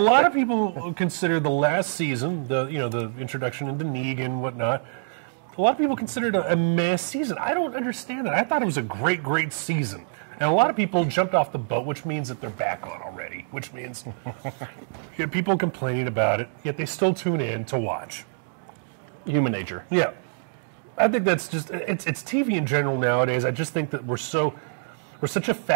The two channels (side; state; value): left; silent; digital silence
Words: of people consider the last season, the introduction into Negan and whatnot, a lot of people consider it a meh season. I don't understand that. I thought it was a great, great season. And a lot of people jumped off the boat, which means that they're back on already, which means you have people complaining about it, yet they still tune in to watch. Human nature. Yeah. I think that's just, it's TV in general nowadays. I just think that we're such a